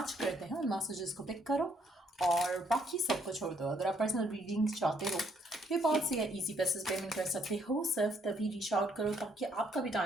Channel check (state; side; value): normal; both; correlation 0.69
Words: करते हैं उन मैसेजेस को पिक करो और बाकी सबको छोड़ दो। अगर आप पर्सनल रीडिंग चाहते हो पेपाल से या इजी पैसेज पेमेंट कर सकते हो, सिर्फ तभी रीच आउट करो ताकि आपका भी